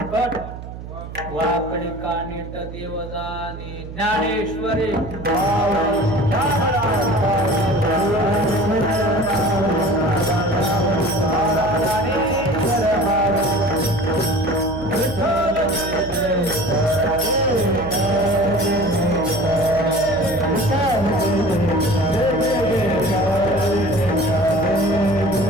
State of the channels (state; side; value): noise; right; hum, 12 dB below the sound